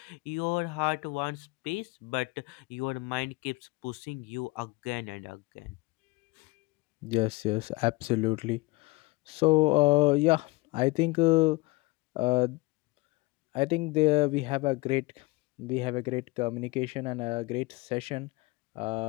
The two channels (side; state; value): right; quieter; 24.0 dB